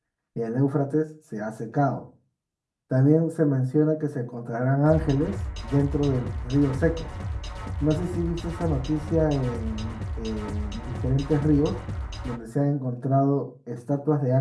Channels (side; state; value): both; identical; correlation 1.00